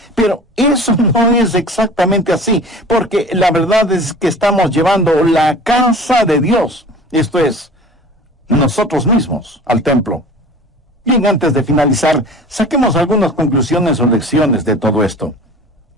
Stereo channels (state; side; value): normal; both; correlation 0.41